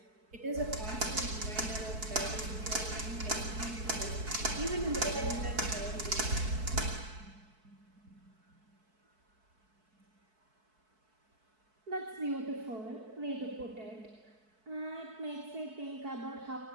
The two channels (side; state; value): left; late; 4.6 ms